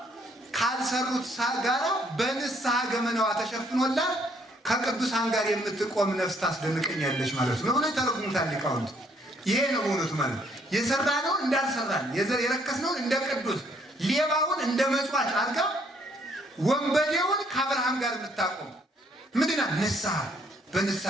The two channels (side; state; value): both; normal; correlation 0.67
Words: ካልሰሩት ጋራ በንስሐ ገመናዋ ተሸፍኖላት ከቅዱሳን ጋር የምትቆም ነፍስ ታስደንቀኛለች ማለት ነው ብሎ ተረጉሙታል ሊቃውንት። ይሄ ነው በእውነቱ ማለት የሰራነውን እንዳልሰራን የረከስነውን እንደ ቅዱስ ሌባውን እንደ መጽዋች አድርጋ ወንበዴውን ከአብርሃም ጋር የምታቆም ምንድና ንስሐ።